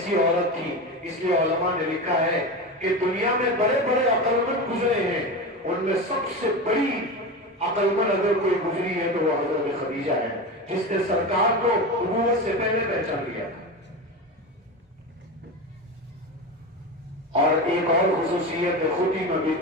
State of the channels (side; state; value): both; normal; correlation 0.23